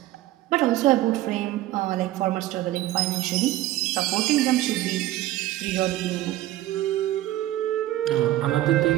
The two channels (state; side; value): quieter; left; 15.3 dB